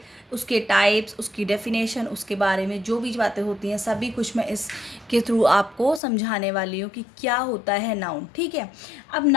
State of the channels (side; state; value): right; drops out; at 6.0 s